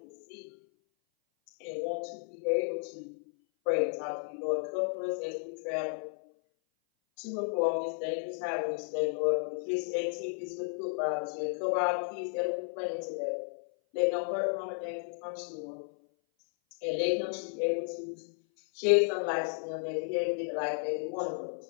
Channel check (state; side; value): silent; right; 56 dB below the other